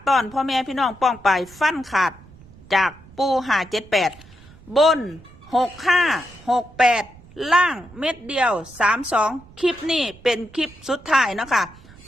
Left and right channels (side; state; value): right; noise; rumble, 23 dB below the sound